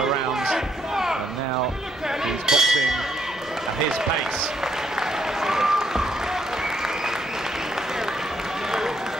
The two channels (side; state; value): both; normal; correlation 0.74